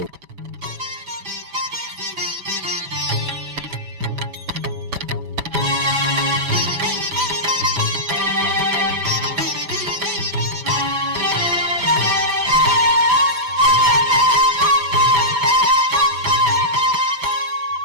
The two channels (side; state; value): left; late; 6.0 ms